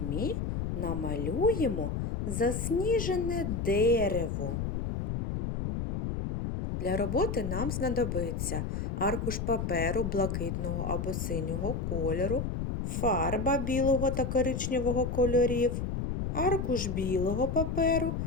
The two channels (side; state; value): left; noise; rumble, 2 dB below the sound